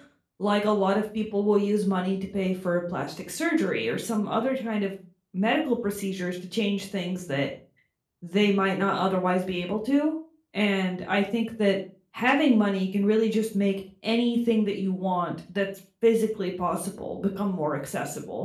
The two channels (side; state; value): both; identical; correlation 1.00